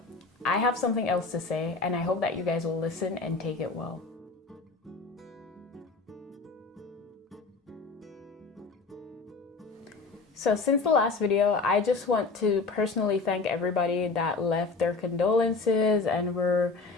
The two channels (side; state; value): right; quieter; 4.0 dB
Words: I have something else to say, and I hope that you guys will listen and take it well. So since the last video, I just want to personally thank everybody that left their condolences and were